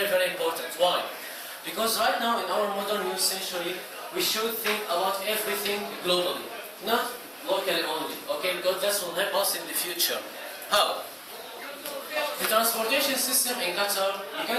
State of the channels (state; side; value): identical; both; correlation 1.00